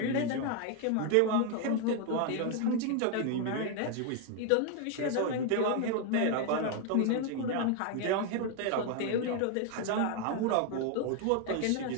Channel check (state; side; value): different; both; correlation 0.01